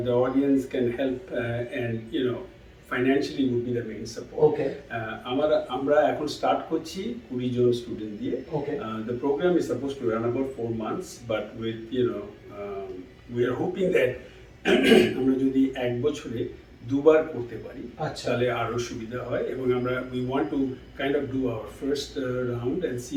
audience can help, and financially would be the main support. Okay. আমরা এখন start করছি 20 জন student দিয়ে। Okay. The program is supposed to run about 4 months, but with we are hoping that আমরা যদি এক বছরে দুবার করতে পারি আচ্ছা। তাহলে আরো সুবিধা হয়, এবং আমরা we want to kind of do our first round and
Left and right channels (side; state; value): both; identical; correlation 1.00